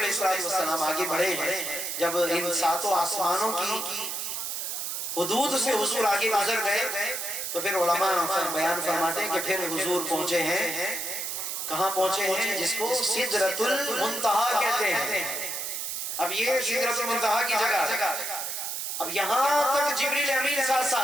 السلام آگے بڑھے ہیں، جب ان 7 آسمانوں کی حدود سے حضور آگے گزر گئے تو پھر علماء بیان فرماتے ہیں کہ پھر حضور پہنچے ہیں، کہاں پہنچے ہیں؟ جس کو سدرۃ المنتہا کہتے ہیں۔ اب یہ سدرۃ المنتہا کی جگہ ہے، اب یہاں تک جبریل امین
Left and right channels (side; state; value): right; noise; hiss, 4 dB below the sound